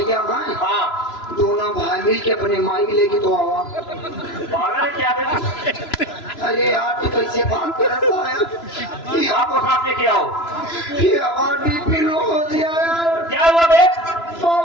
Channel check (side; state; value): right; late; 3.0 ms